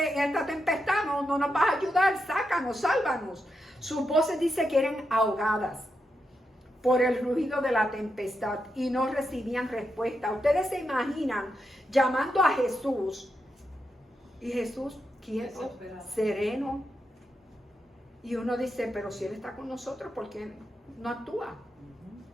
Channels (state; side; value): normal; both; correlation 0.85